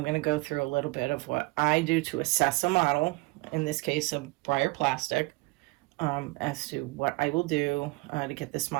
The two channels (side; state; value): left; quieter; 24.9 dB